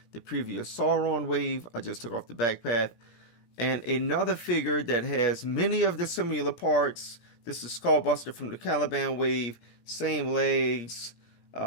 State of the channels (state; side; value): late; right; 17 ms